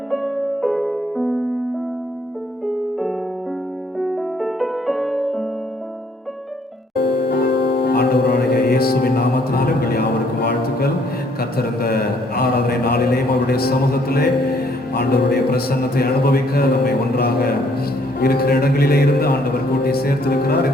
இயேசுவின் நாமத்தினாலே உங்கள் யாவருக்கும் வாழ்த்துக்கள். கர்த்தர் இந்த ஆராதனை நாளிலேயும் அவருடைய சமூகத்திலே ஆண்டவருடைய பிரசன்னத்தை அனுபவிக்க நம்மை ஒன்றாக இருக்கிற இடங்களிலே இருந்து ஆண்டவர் கூட்டி சேர்த்திருக்கிறார்.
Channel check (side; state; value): both; normal; correlation 0.65